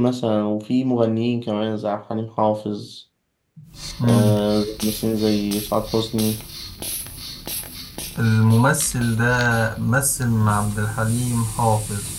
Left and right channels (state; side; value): identical; both; correlation 1.00